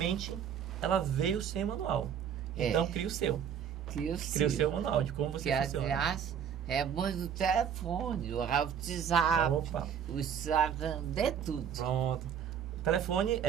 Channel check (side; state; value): left; quieter; 8.2 dB